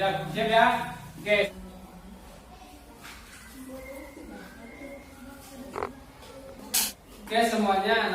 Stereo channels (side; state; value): both; identical; correlation 1.00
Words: ya? Oke. Oke semuanya